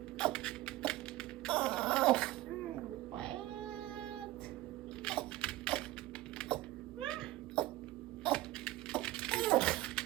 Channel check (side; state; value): left; quieter; 17.0 dB